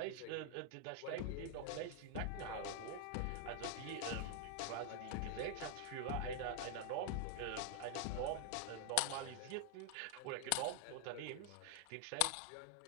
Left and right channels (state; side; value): different; both; correlation 0.00